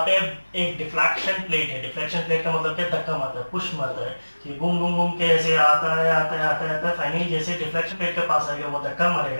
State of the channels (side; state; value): both; inverted; correlation -1.00